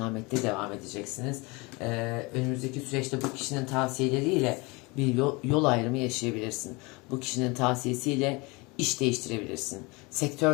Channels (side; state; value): right; quieter; 26.3 dB